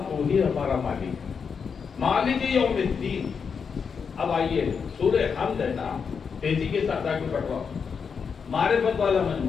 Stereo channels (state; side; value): quieter; right; 6.1 dB